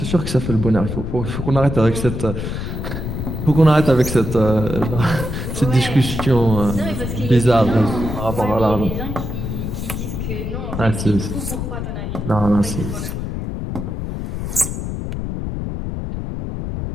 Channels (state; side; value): noise; left; rumble, 4 dB below the sound